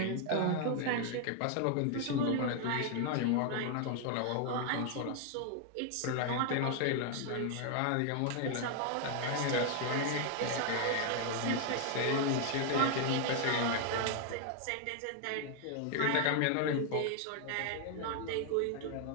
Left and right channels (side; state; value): both; different; correlation 0.00